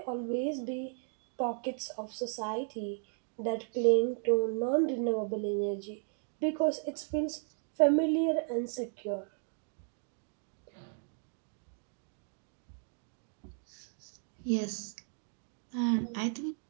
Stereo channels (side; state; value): left; silent; 54 dB below the other